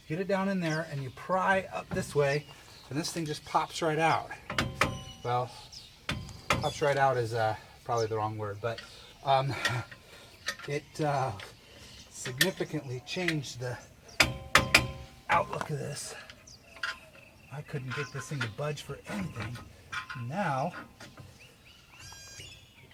Get it down in there and you pry up this way, and this thing just pops right out. Well, pops right out is probably the wrong word, but it significantly changed the outlook of this. I couldn't get this thing to budge for anything. Now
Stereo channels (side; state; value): both; identical; correlation 1.00